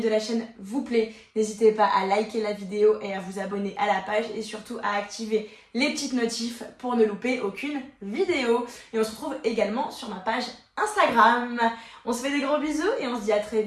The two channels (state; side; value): identical; both; correlation 1.00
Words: la chaîne vous plaît, n'hésitez pas à liker la vidéo et à vous abonner à la page et surtout à activer les petites notifs pour ne louper aucune vidéo. Et on se retrouve également sur ma page Instagram. On se fait des gros bisous et on se dit à très